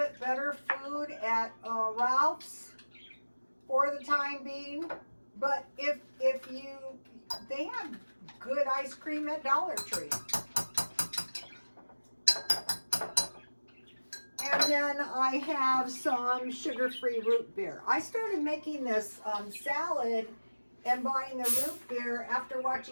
better food at Ralph's for the time being. But if they have good ice cream at Dollar Tree. And then I have some sugar-free root beer. I started making this salad and buying the root beer after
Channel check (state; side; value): inverted; both; correlation -1.00